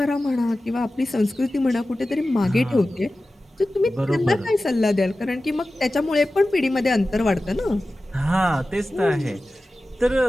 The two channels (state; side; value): normal; both; correlation 0.95